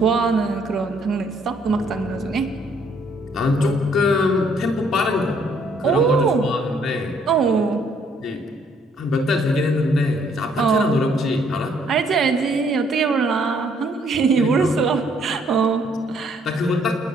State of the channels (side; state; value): both; normal; correlation 0.66